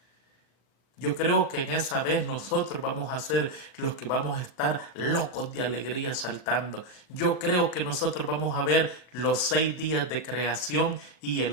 Yo creo que en esa vez nosotros vamos a ser los que vamos a estar locos de alegría saltando. Yo creo que nosotros vamos a ver los 6 días de creación y el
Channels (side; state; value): right; late; 39 ms